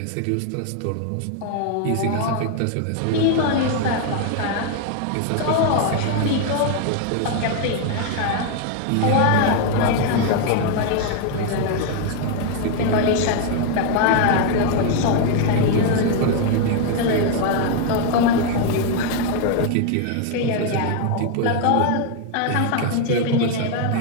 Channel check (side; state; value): both; different; correlation 0.00